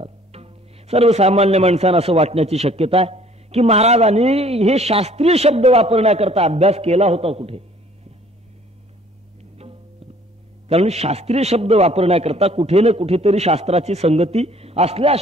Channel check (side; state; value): both; normal; correlation 0.56